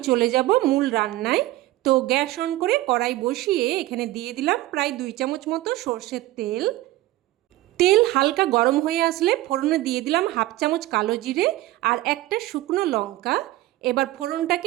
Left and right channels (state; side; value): quieter; left; 16.9 dB